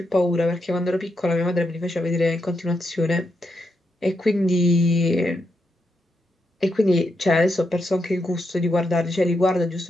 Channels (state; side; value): normal; both; correlation 0.83